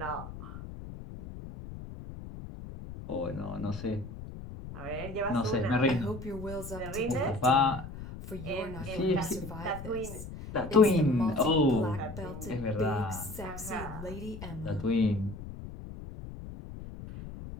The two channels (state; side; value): noise; left; rumble, 11 dB below the sound